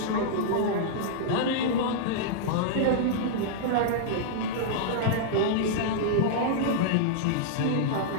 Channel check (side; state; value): both; different; correlation -0.02